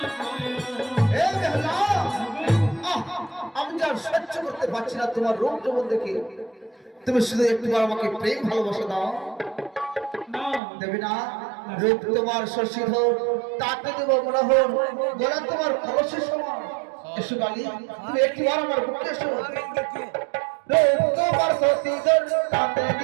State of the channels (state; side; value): drops out; left; at 10.6 s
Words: সহ্য করতে পারছি না তোমার রূপ যৌবন দেখে তুমি শুধু একটিবার আমাকে প্রেম ভালোবাসা দাও দেবে না রূপ তোমার শশীধর তাতে দেব মনোহর গলা তোমার কলসের সমান এসো গালি তুমি একটিবার আমার বুকে এসো রূপ তোমার শশীধর তাতে